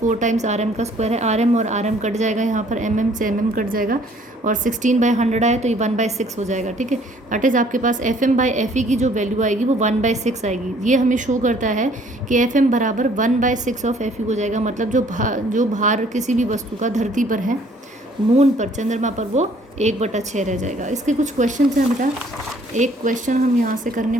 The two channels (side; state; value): both; normal; correlation 0.59